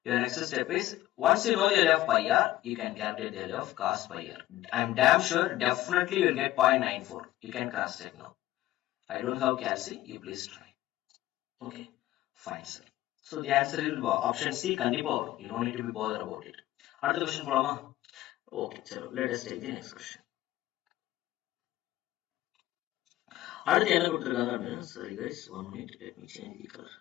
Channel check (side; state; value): right; quieter; 15.4 dB